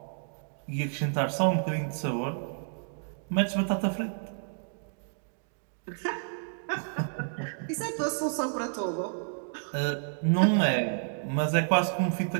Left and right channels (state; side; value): silent; left; digital silence